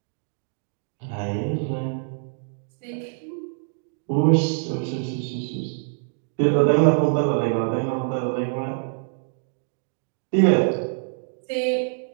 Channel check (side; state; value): left; silent; digital silence